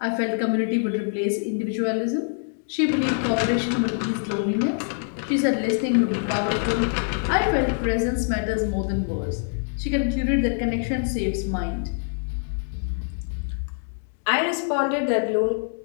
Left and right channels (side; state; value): right; silent; digital silence